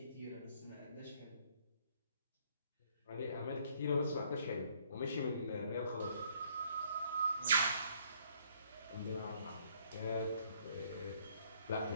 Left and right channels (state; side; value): inverted; both; correlation -0.64